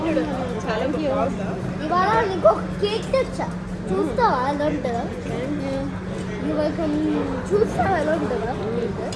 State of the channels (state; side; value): identical; both; correlation 1.00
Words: ఇవాళ నీకు ఒక కేక్ తెచ్చా చూస్తావా ఎలా ఉంటుందా ఇవాళ చూస్తావా ఎలా ఉంటుందా